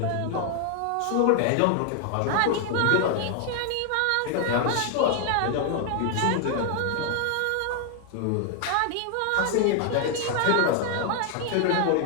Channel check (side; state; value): both; different; correlation 0.00